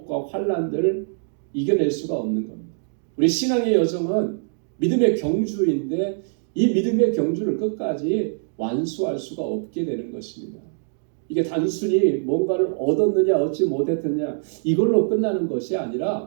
환난들을 이겨낼 수가 없는 겁니다. 우리 신앙의 여정은 믿음의 경주인데 이 믿음의 경주를 끝까지 완수할 수가 없게 되는 것입니다. 이게 단순히 뭔가를 얻었느냐 얻지 못했느냐 이걸로 끝나는 것이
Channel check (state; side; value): silent; left; 63 dB below the other